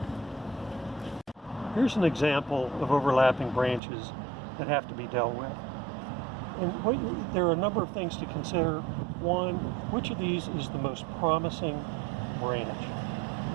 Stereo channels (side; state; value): left; drops out; at 3.8 s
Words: Here's an example of overlapping branches that have to be dealt with. And there are a number of things to consider. One, which of these is the most promising branch?